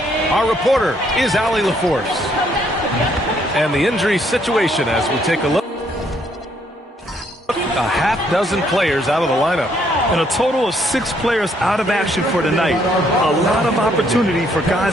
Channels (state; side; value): normal; both; correlation 0.69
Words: Our reporter is Allie LaForce. And the injury situation as we take a look. A half dozen players out of the lineup. And a total of 6 players out of action for tonight. A lot of opportunity for